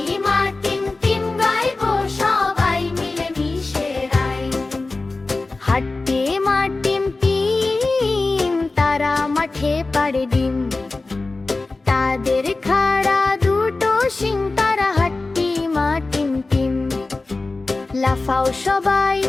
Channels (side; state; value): right; quieter; 3.4 dB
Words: মা টিম টিম গাইবো সবাই মিলে মিশে রাইম। হাট্টি মা টিম টিম তারা মাঠে পাড়ে ডিম, তাদের খাড়া দুটো শিং, তারা হাট্টি মা টিম টিম। লাফাও সবাই